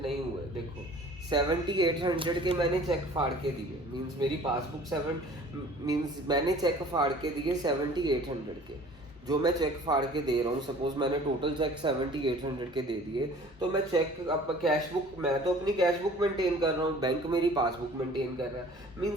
हुए? देखो 7800 के मैंने चेक फाड़ के दिए। मीन्स मेरी पासबुक मीन्स मैंने चेक फाड़ के दिए 7800 के। जो मैं चेक फाड़ के दे रहा हूँ, सपोज मैंने टोटल चेक 7800 के दे दिए, तो मैं चेक अब कैश बुक, मैं तो अपनी कैश बुक मेंटेन कर रहा हूँ, बैंक मेरी पासबुक मेंटेन कर रहा है।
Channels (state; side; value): normal; both; correlation 0.49